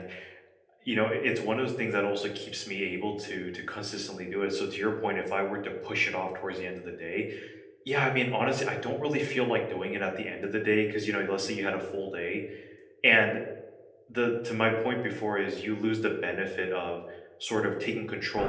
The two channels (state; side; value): identical; both; correlation 1.00